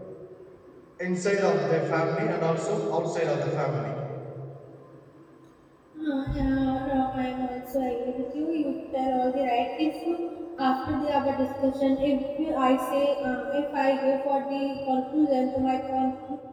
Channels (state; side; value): identical; both; correlation 1.00